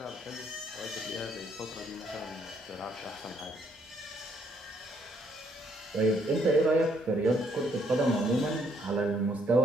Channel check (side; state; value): both; normal; correlation 0.69